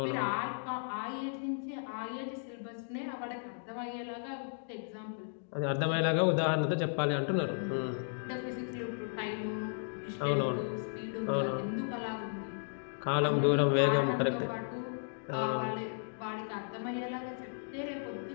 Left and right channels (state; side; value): silent; right; digital silence